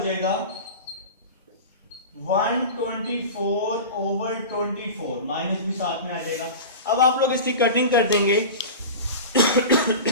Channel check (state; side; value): inverted; both; correlation -0.31